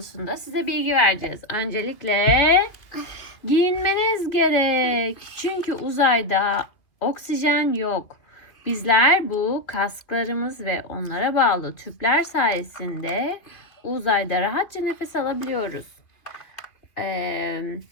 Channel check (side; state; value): right; late; 2.7 ms